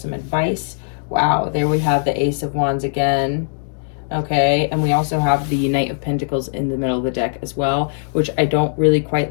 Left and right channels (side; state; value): right; silent; digital silence